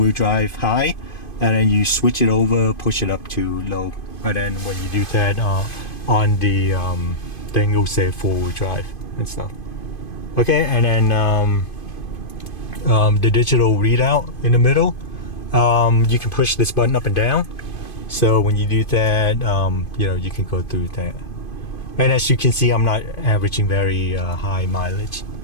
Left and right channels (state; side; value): late; right; 2.5 ms